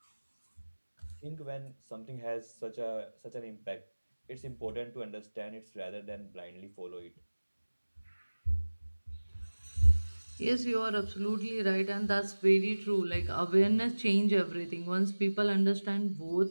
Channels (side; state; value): both; inverted; correlation -1.00